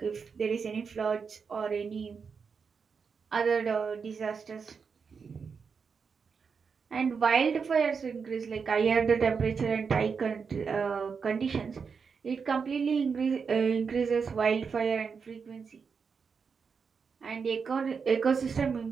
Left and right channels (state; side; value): quieter; left; 5.7 dB